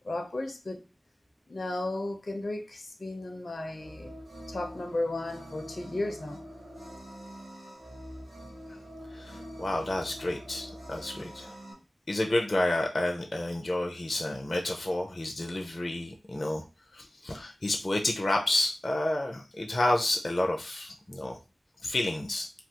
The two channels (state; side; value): normal; both; correlation 0.97